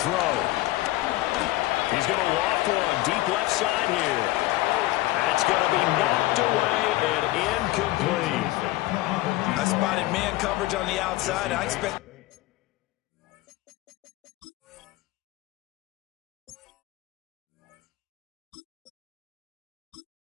throw. He's going to loft one deep left side here. That's going to be knocked away and incomplete. I spotted man coverage on the outside. I expect...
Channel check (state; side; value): quieter; right; 17.9 dB